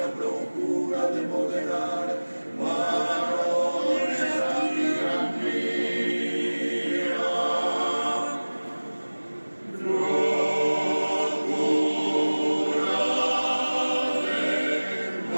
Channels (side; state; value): both; inverted; correlation -1.00